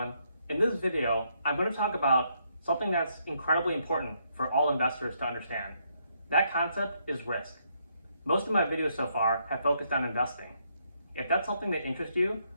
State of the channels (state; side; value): inverted; both; correlation -0.74